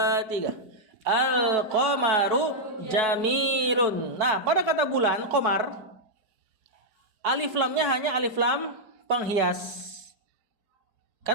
3. Al-qamaru jamilun. Nah, pada kata bulan, qamar, alif lamnya hanya alif lam penghias.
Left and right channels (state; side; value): late; left; 4.6 ms